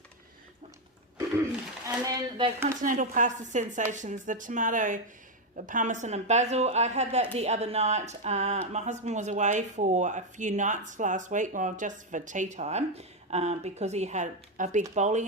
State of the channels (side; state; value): both; normal; correlation 0.05